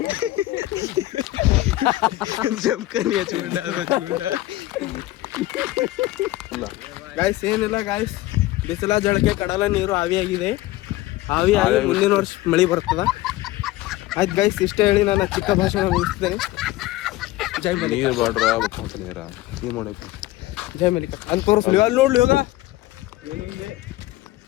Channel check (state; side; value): quieter; right; 17.2 dB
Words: ಜಮ್ಕನಿ ಹಚ್ಕೊಂಡ ಗಾಯ್ಸ್ ಏನಿಲ್ಲ ಗಾಯ್ಸ್ ಬಿಸಿಲ ಜಳಕೆ ಕಡಲ ನೀರು ಆವಿಯಾಗಿದೆ ಆವಿಯಾಗಿ ಮುಂದಿನ ವರ್ಷ ಮಳೆ ಬರ್ತದ ಆಯ್ತು ಗಾಯ್ಸ್ ಇಷ್ಟ ಹೇಳಿ ನಾನು ಚಿಕ್ಕ ಭಾಷಣ ಮುಗಿಸ್ತೇನೆ ಜೈ ಮಲಿಕ ನೀವು ಮಾಡಬೇಕು ಜೈ ಮಲಿಕ ಅಂತ ತೋರಿಸ್ಲಿ ಅಲ್ಲಿ ನೋಡ್ಲಿ ಹೋಗ